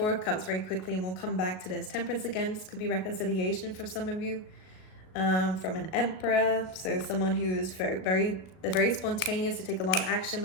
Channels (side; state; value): right; late; 37 ms